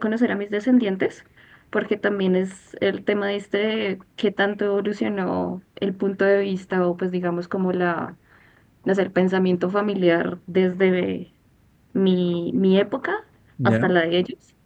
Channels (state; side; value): identical; both; correlation 1.00